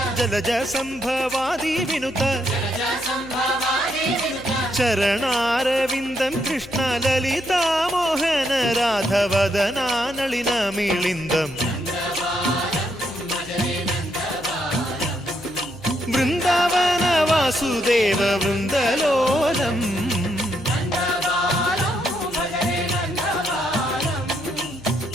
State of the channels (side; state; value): left; noise; hum, 19 dB below the sound